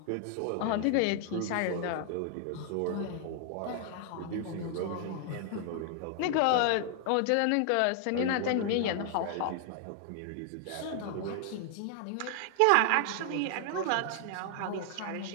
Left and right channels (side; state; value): both; different; correlation 0.00